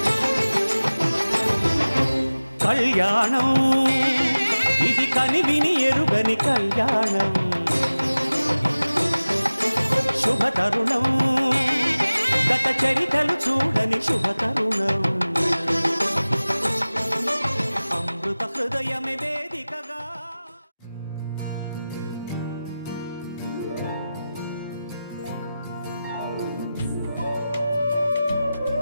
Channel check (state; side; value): inverted; both; correlation -0.97